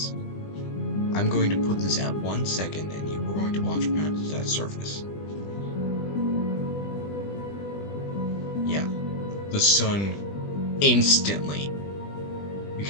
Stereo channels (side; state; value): right; late; 20 ms